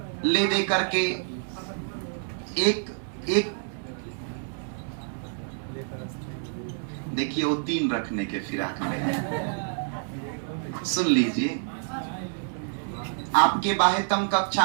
ले दे करके एक देखिए वो 3 रखने के फिराक में। सुन लीजिए, आपके बाह्यतम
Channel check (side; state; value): left; silent; digital silence